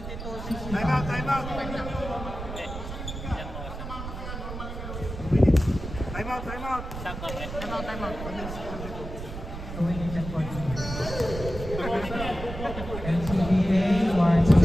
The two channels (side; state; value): right; noise; rumble, 8 dB below the sound